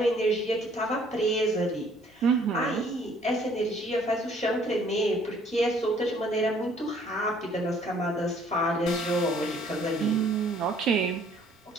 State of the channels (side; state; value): both; normal; correlation 0.60